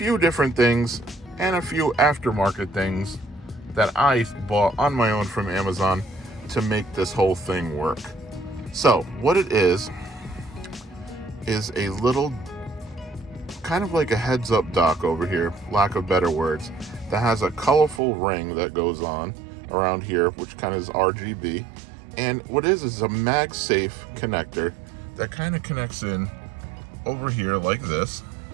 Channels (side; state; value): left; drops out; at 18.0 s